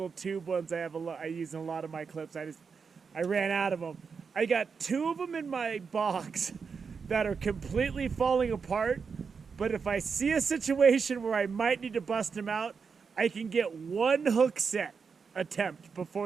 tube ones I use in a lot of my clips. I ran out of them. I got 2 of them in my box that are completely falling apart. But if I see a situation where I might need to bust them out, I can get 1 hook set attempt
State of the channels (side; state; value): left; quieter; 5.6 dB